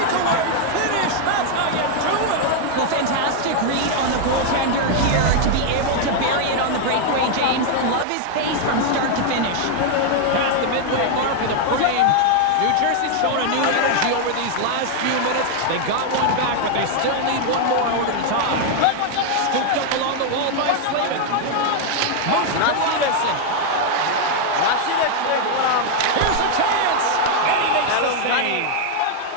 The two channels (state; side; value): different; both; correlation 0.00